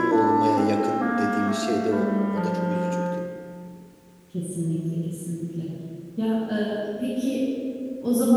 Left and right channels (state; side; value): identical; both; correlation 1.00